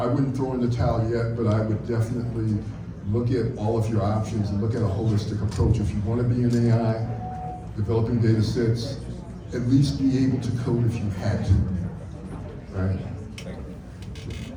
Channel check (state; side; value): identical; both; correlation 1.00